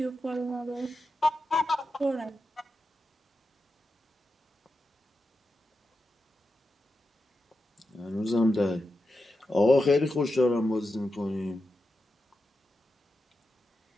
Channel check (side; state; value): both; normal; correlation 0.89